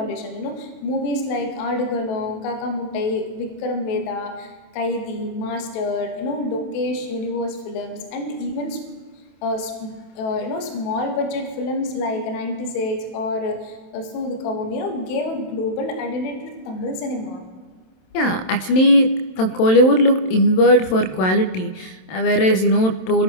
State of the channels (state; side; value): late; right; 27 ms